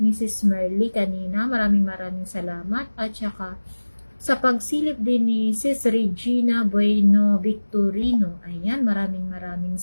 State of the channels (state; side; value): inverted; both; correlation -1.00